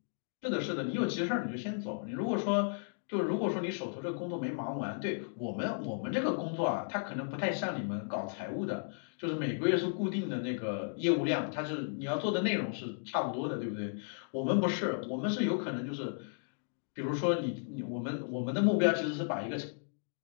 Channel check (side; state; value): right; silent; digital silence